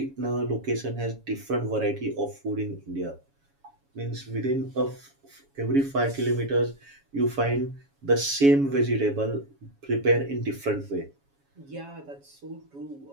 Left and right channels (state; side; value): late; left; 7.2 ms